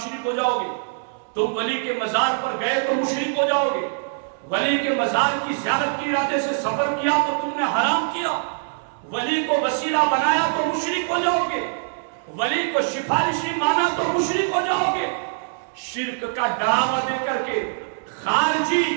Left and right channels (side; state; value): left; silent; 63 dB below the other